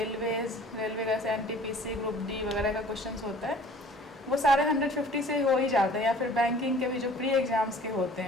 का एनटीपीसी, ग्रुप डी वगैरह का क्वेश्चंस होता है वो सारे 150 से हो ही जाते हैं। या फिर बैंकिंग के भी जो प्री एग्ज़ाम्स के होते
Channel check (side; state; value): both; normal; correlation 0.50